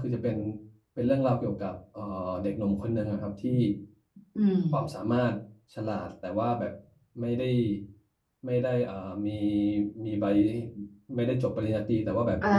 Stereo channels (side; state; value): both; identical; correlation 1.00